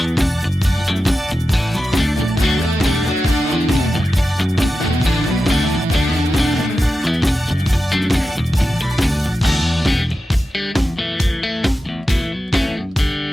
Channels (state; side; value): normal; both; correlation 0.92